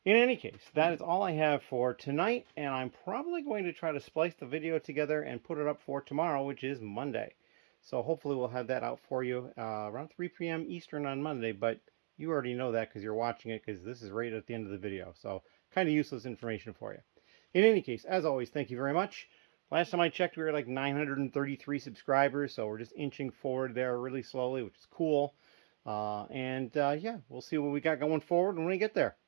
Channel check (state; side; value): silent; left; digital silence